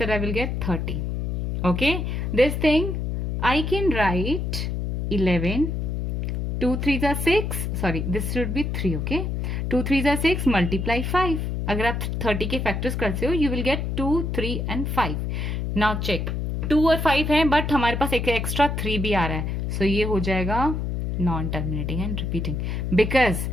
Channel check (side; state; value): left; noise; hum, 2 dB below the sound